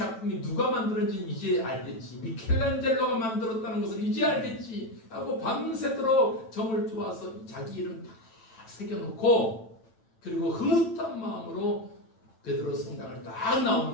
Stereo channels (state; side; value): late; right; 9.0 ms